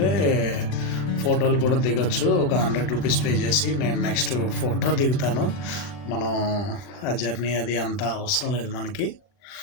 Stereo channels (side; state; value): right; late; 40 ms